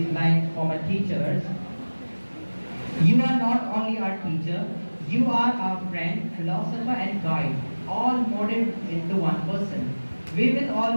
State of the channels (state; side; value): inverted; both; correlation -1.00